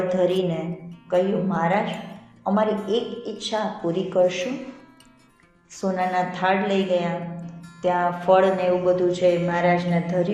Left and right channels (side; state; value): both; identical; correlation 1.00